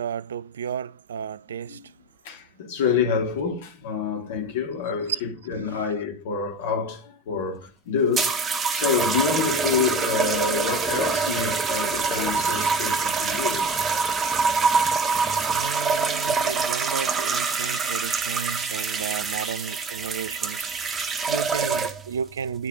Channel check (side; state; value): both; normal; correlation 0.33